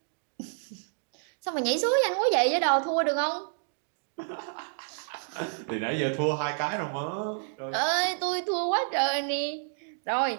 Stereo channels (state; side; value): silent; left; digital silence